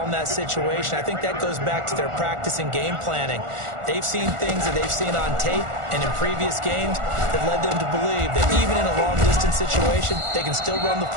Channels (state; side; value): late; left; 1.4 ms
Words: in that situation. I think that goes back to their practice and game planning. They've seen things that they've seen on tape and in previous games that led them to believe that even in a long-distance situation, they can still run the